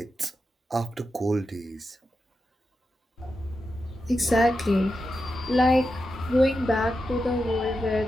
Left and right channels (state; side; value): normal; both; correlation 0.89